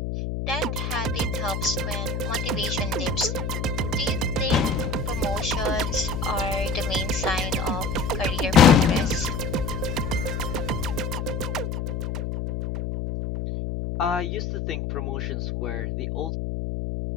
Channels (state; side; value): noise; left; hum, 3 dB below the sound